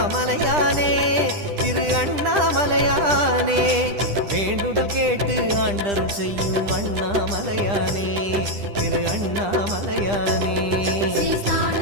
திரு அண்ணாமலையானே வேண்டுதல் கேட்டு ஆண்டரும் செய்யும் அண்ணாமலையானே திரு அண்ணாமலையானே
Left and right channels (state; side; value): late; left; 10 ms